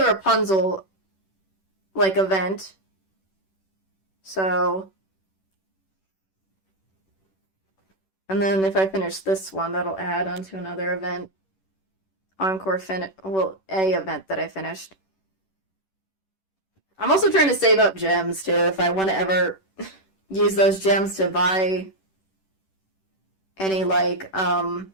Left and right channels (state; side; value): late; right; 10 ms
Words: Rapunzel, event. So... And then if I finish this one, that'll add onto another event. Encore a event that I finished. I'm also trying to save up gems, too, if I want to ever use those gems to buy any, well,